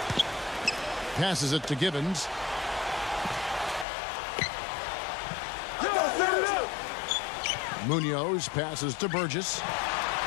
Passes it to Givens. Munoz passes to Burgess.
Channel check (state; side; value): drops out; right; at 3.9 s